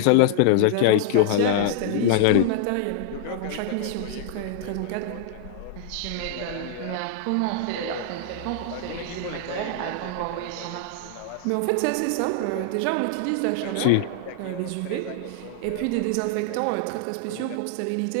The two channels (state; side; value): different; both; correlation -0.01